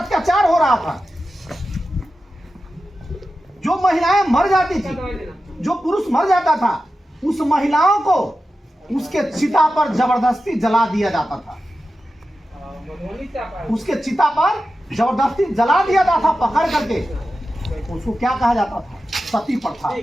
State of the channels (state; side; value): normal; both; correlation 0.92